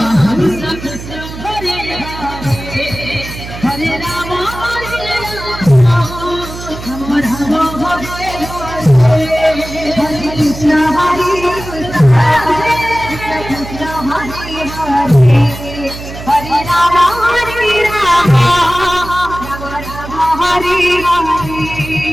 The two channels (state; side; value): noise; right; hum, 11 dB below the sound